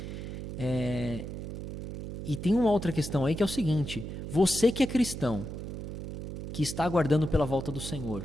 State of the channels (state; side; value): noise; right; hum, 7 dB below the sound